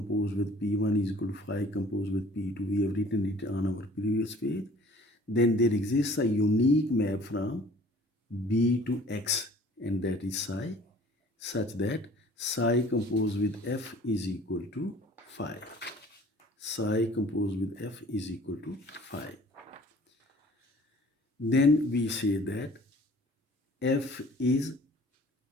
with P1 is equal to phi composed with P2. We have written it on our previous page. Then there exists a unique map from B to X, and that is psi, such that psi composed with F is equal to phi. Psi composed with F is equal to phi. Then we say that F is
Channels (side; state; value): both; normal; correlation 0.51